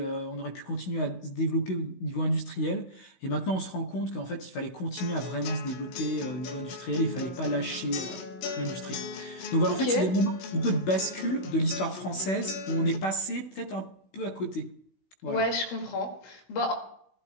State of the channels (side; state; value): right; late; 16 ms